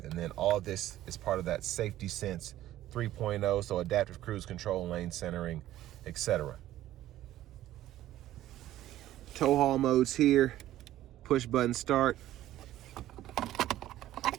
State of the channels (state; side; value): quieter; left; 13.8 dB